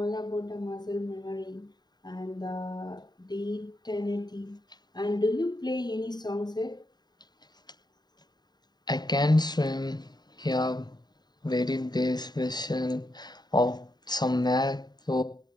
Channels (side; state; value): right; late; 0.20 ms